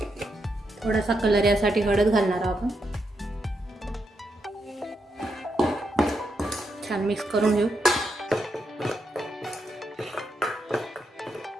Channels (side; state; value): both; normal; correlation 0.82